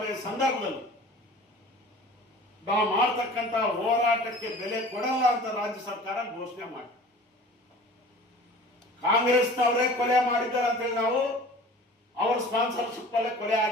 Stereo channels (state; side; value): normal; both; correlation 0.43